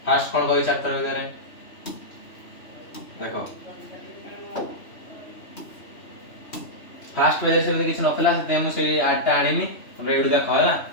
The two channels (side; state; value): right; late; 3.0 ms